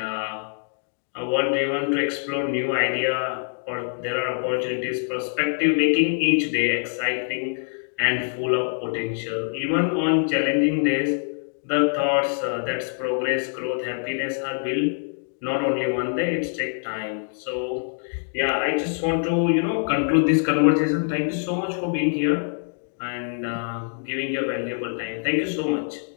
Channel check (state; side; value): silent; right; digital silence